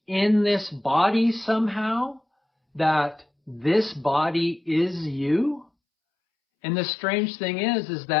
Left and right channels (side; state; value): right; drops out; at 5.7 s